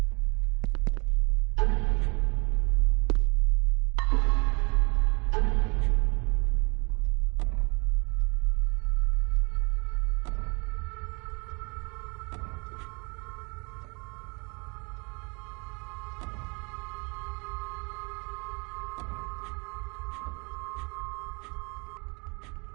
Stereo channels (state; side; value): quieter; left; 30.7 dB